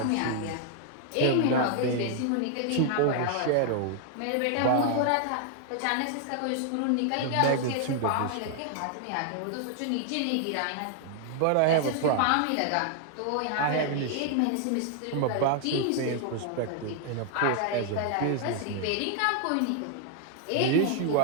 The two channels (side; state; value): both; different; correlation 0.00